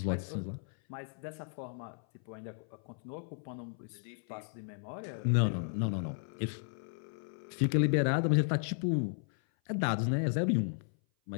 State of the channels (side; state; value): right; silent; 55 dB below the other